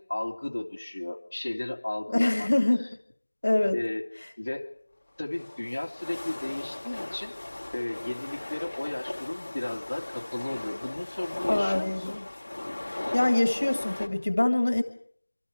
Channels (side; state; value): both; inverted; correlation -1.00